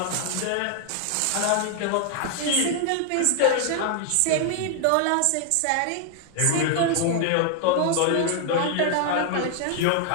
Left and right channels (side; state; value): both; different; correlation 0.00